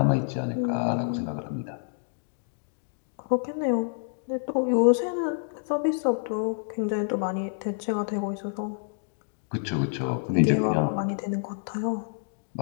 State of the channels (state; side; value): silent; right; digital silence